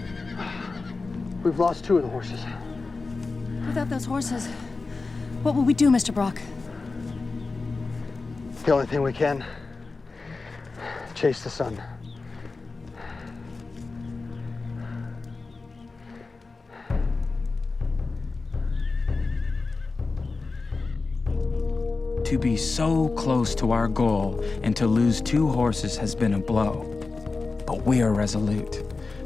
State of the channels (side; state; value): right; quieter; 3.9 dB